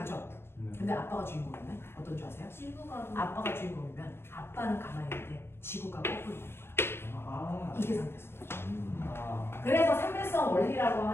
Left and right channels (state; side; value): late; right; 0.12 ms